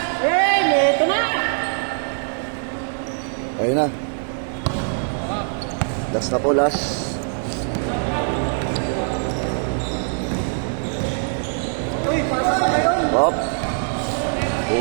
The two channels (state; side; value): silent; left; 64 dB below the other